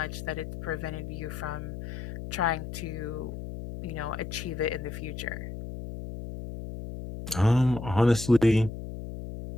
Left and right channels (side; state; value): left; noise; hum, 8 dB below the sound